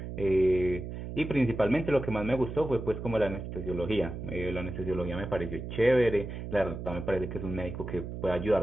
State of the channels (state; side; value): noise; right; hum, 7 dB below the sound